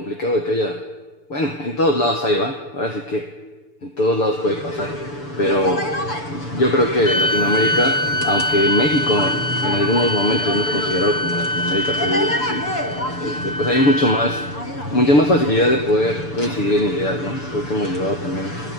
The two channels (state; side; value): late; right; 6.9 ms